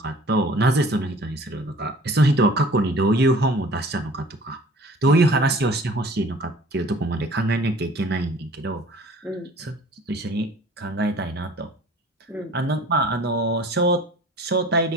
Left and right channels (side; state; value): both; normal; correlation 0.48